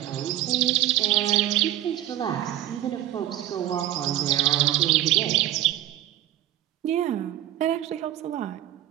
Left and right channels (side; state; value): left; quieter; 13.3 dB